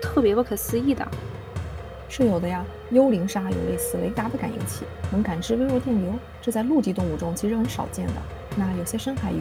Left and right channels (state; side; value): identical; both; correlation 1.00